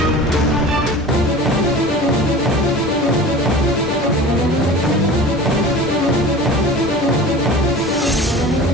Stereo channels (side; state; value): both; normal; correlation 0.38